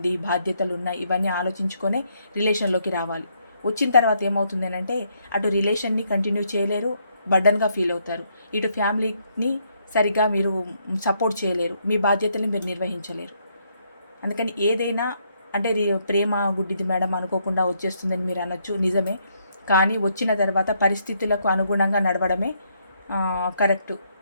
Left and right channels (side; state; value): both; inverted; correlation -0.73